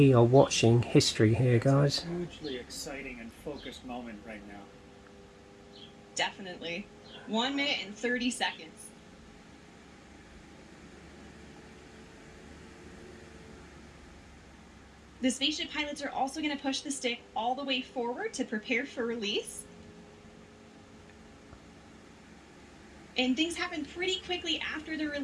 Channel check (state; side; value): identical; both; correlation 1.00